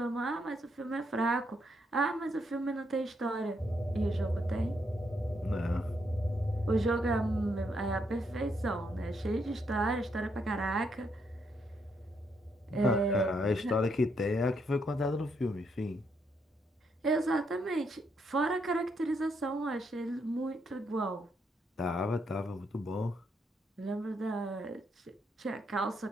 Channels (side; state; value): both; normal; correlation 0.76